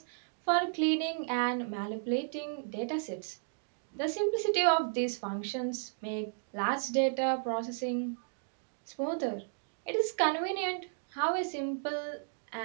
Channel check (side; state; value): left; silent; digital silence